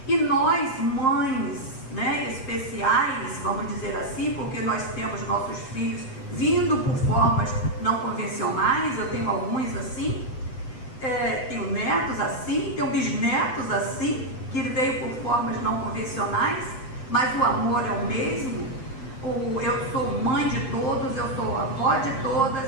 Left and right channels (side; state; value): right; late; 8.0 ms